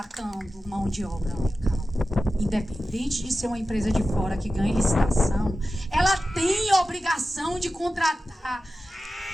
mão de obra local. Independente de ser uma empresa de fora que ganhe licitação, ela tem obrigação de contratar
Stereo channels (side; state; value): both; normal; correlation 0.94